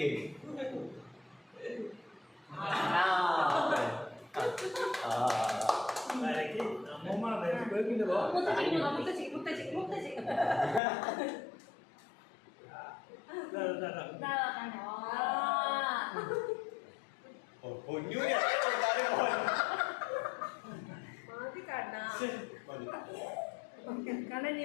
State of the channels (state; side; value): drops out; right; at 10.8 s